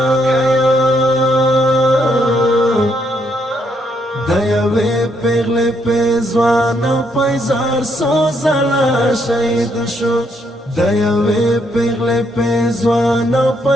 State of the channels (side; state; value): both; normal; correlation 0.74